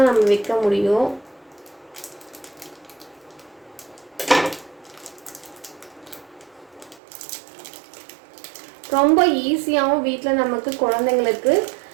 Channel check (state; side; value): drops out; left; at 7.0 s